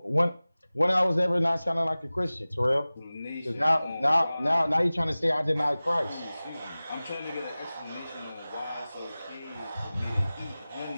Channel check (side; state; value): both; inverted; correlation -0.98